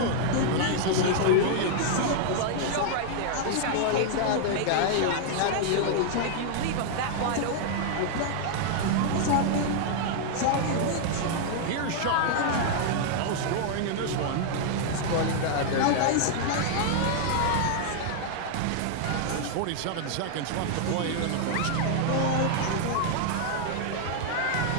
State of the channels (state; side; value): different; both; correlation -0.01